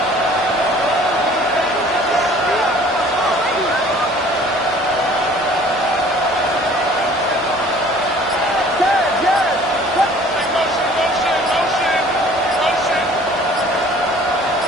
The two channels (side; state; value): both; normal; correlation 0.51